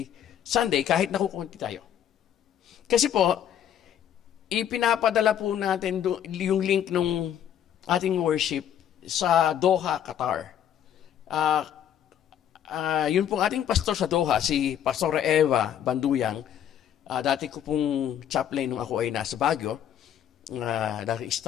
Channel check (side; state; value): right; quieter; 9.8 dB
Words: Sunday kahit nakukunti tayo. Kasi po, ipinapadala po natin yung link ng ating worship sa Doha, Qatar. Yun pong ating pastor sa Doha, si Pastor Eva Banduyang. Dati ko pong chaplain nung ako ay nasa Baguio. Dati